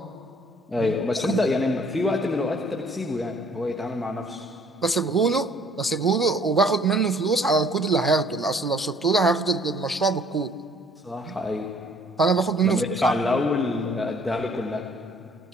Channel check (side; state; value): both; normal; correlation 0.58